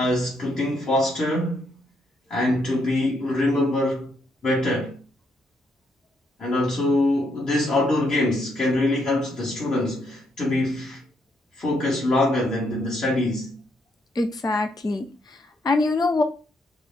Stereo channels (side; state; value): both; normal; correlation 0.75